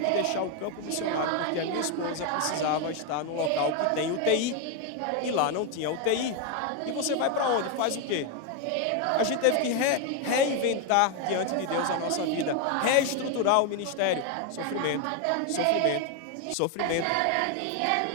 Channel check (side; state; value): both; different; correlation 0.01